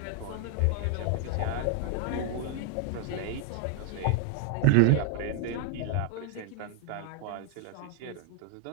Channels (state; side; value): different; both; correlation 0.00